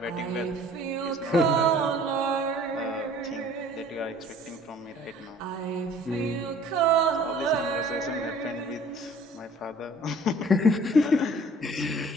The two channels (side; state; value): both; normal; correlation 0.51